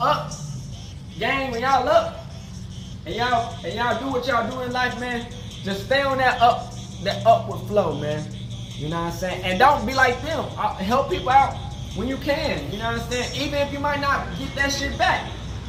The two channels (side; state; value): both; identical; correlation 1.00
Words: gang, when y'all up, and y'all do what y'all do in life, man, just stay on that upward flow, man. You know what I'm saying? And don't be like them. Help people out when you can. You know what I'm saying? Even if you might not get that shit back.